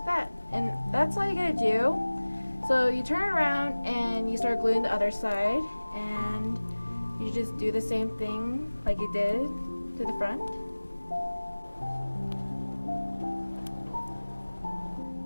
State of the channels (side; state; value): both; inverted; correlation -1.00